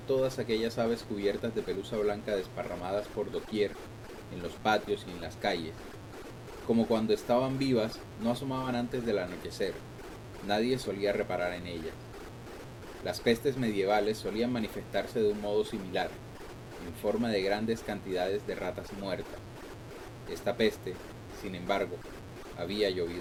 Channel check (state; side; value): identical; both; correlation 1.00